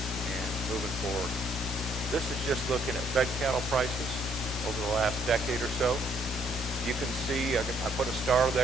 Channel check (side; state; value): both; normal; correlation 0.67